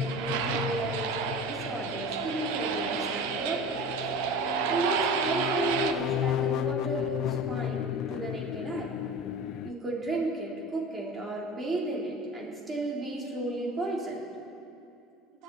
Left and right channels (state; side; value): normal; both; correlation 0.35